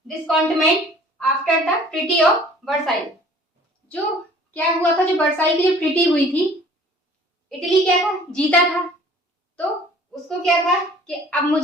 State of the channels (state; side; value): normal; both; correlation 0.52